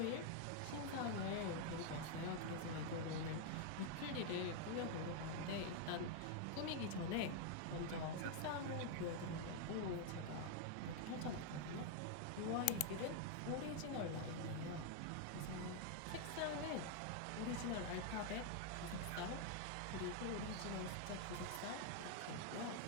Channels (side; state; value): both; different; correlation 0.00